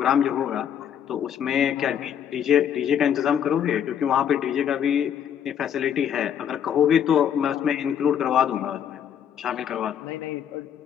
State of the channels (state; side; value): quieter; right; 9.0 dB